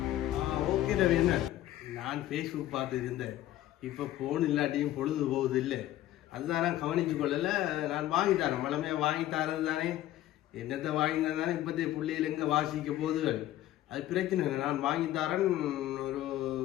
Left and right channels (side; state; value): right; quieter; 13.9 dB